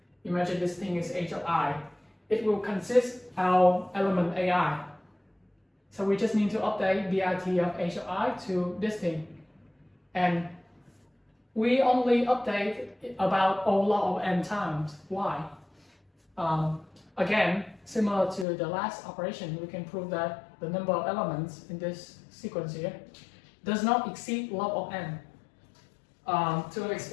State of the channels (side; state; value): right; drops out; at 18.4 s